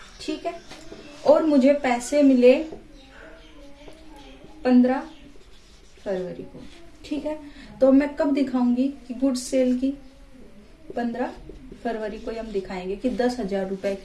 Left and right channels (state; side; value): identical; both; correlation 1.00